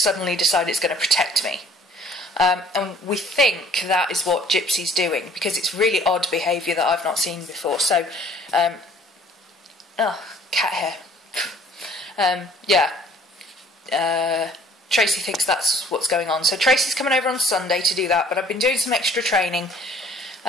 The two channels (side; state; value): both; normal; correlation 0.55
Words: decide it's going to protect me. And we think that is what Gypsy's doing, because it's really odd behaviour that I've not seen before. So, oh, cat hair. Yeah. Tracy thinks that's what's going on. So Tracy's coming over on Sunday to do that, but I've been doing some extra training,